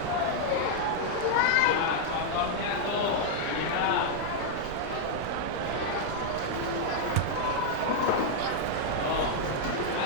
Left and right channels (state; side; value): different; both; correlation -0.01